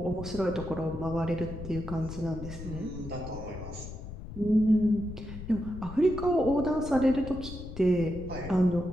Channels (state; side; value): noise; left; rumble, 10 dB below the sound